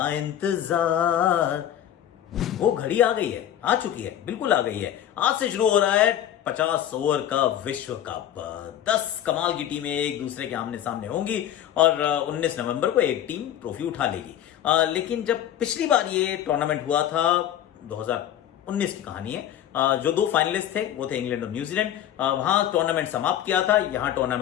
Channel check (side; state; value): right; quieter; 11.0 dB